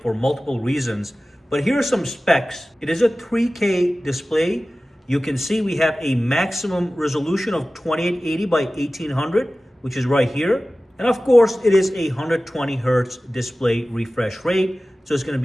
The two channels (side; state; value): both; normal; correlation 0.96